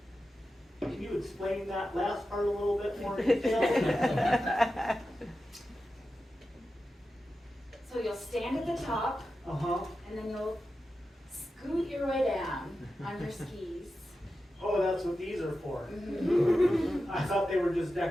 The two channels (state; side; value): normal; both; correlation 0.91